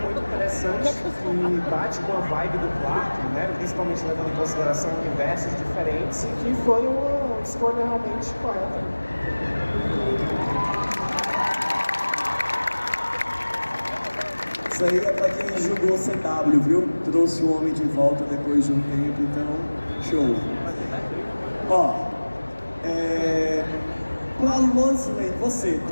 muito interessante, que bate com a vibe do Clark, né? Principalmente levando em consideração universos diferentes, e que foi uma escolha realmente correta. Isso aí é pra quem julgou CW, viu? Trouxe o homem de volta depois de um tempo, então, show. Ó, pra Lois Lane, você,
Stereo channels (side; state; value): both; inverted; correlation -1.00